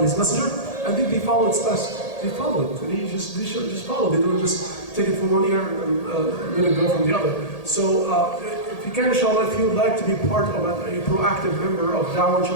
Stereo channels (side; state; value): right; late; 1.8 ms